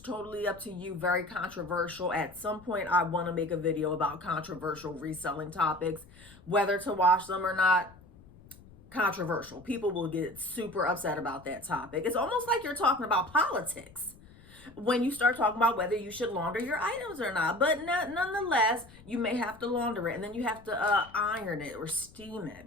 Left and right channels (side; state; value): left; noise; rumble, 22 dB below the sound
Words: up to you. Very controversial. At some point, I want to make a video about controversial reselling topics, whether to wash them or not. Controversial. People will get super upset about that topic. It's almost like you're talking about politics when you start talking about whether you should launder your items or not. But nonetheless, you may have to launder it, and then you have to iron it or steam it,